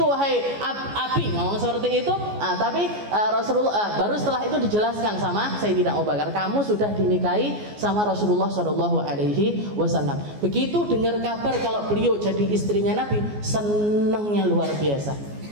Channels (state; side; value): late; left; 14 ms